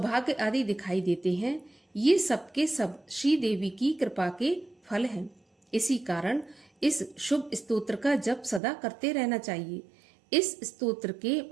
आदि दिखाई देते हैं, ये सब के सब श्री देवी की कृपा के फल हैं। इसी कारण इस शुभ स्तोत्र का जप सदा करते रहना चाहिए। इस स्तोत्र के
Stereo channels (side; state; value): left; drops out; at 8.6 s